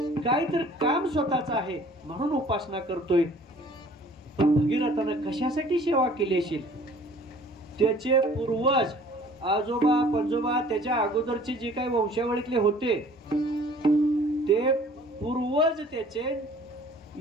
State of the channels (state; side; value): normal; both; correlation 0.52